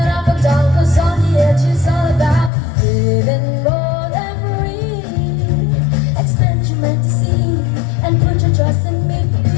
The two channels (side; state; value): right; drops out; at 2.5 s